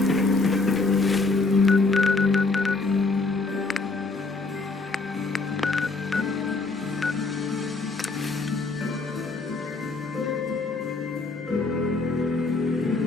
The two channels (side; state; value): right; quieter; 3.6 dB